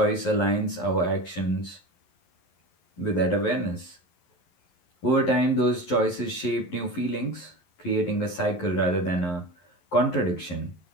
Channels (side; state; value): right; late; 11 ms